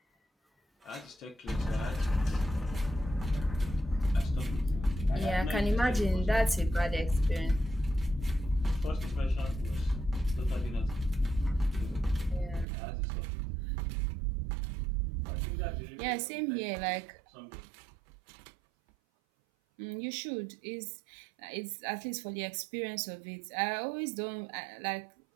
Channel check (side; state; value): left; drops out; at 12.7 s